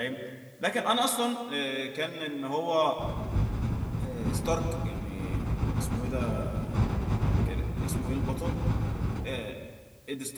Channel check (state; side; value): identical; both; correlation 1.00